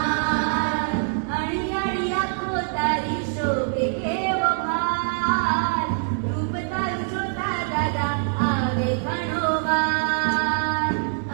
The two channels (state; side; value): silent; left; digital silence